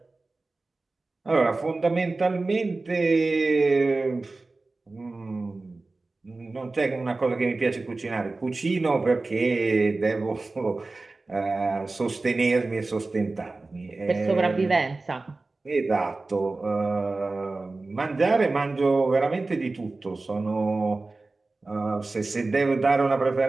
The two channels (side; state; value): left; quieter; 3.4 dB